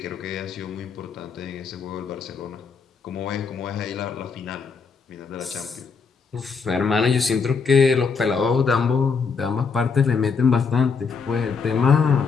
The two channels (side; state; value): right; quieter; 5.4 dB